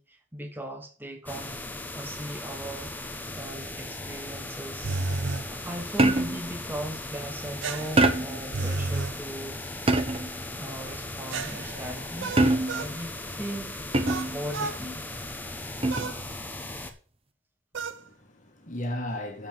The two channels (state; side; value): normal; both; correlation 0.56